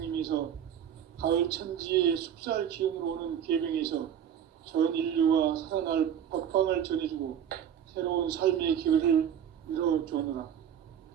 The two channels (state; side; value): quieter; left; 9.1 dB